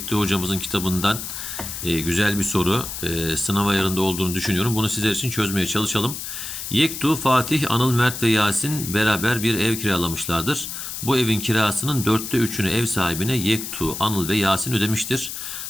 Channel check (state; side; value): noise; left; hiss, 7 dB below the sound